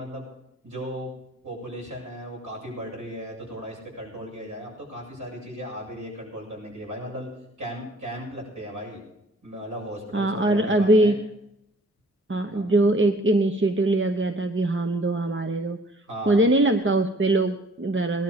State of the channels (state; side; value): normal; both; correlation 0.55